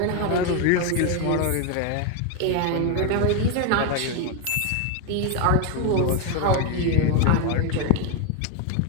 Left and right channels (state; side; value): different; both; correlation 0.02